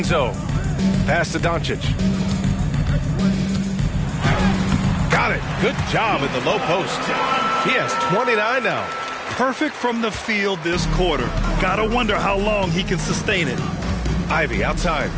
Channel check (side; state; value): both; identical; correlation 1.00